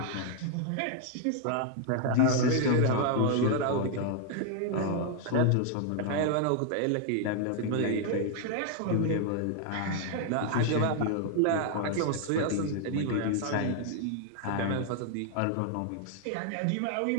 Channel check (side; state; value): both; different; correlation 0.00